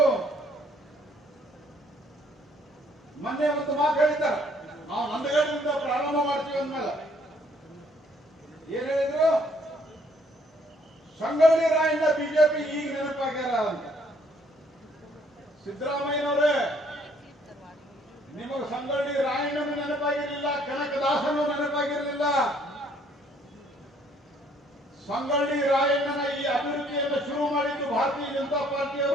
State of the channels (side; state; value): both; normal; correlation 0.64